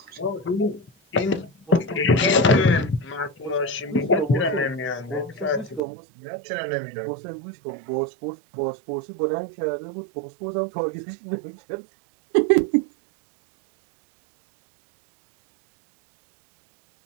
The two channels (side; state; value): left; drops out; at 5.8 s